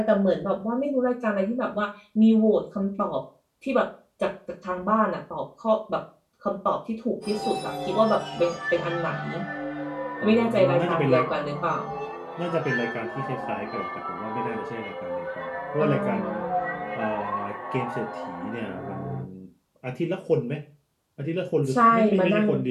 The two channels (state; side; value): identical; both; correlation 1.00